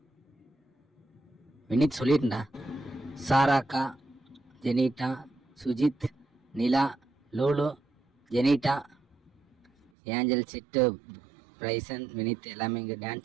வினித் சொல்லிட்டா, சாராக்கா, ஜெனிட்டா, சுஜித், நிலா, லோலோ, ஜெனிட்டா, ஏஞ்சல், சிட்டு, பிரைசன், வினித் எல்லாமே இங்கே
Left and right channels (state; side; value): drops out; left; at 9.9 s